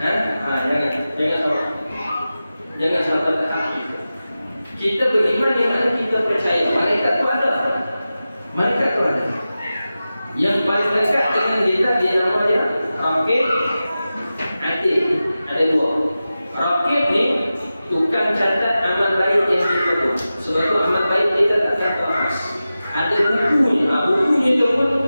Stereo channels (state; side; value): inverted; both; correlation -0.94